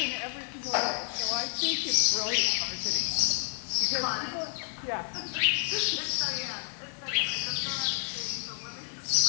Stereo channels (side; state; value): right; silent; 58 dB below the other